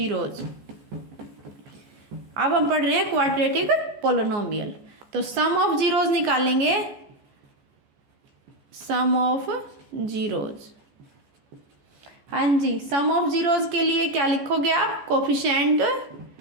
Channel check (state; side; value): late; left; 14 ms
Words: अब हम पढ़ रहे हैं क्वाड्रेटिक पोलिनोमियल, तो सम ऑफ जीरोज निकालेंगे, सम ऑफ जीरोज, हाँ जी, सम ऑफ जीरोज के लिए क्या लिखोगे आप, कोफिशिएंट